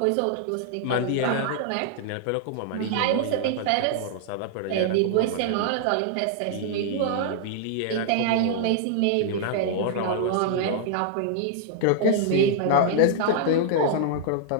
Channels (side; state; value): both; different; correlation -0.01